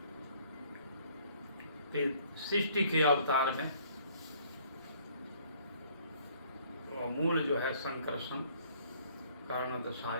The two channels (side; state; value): both; inverted; correlation -0.60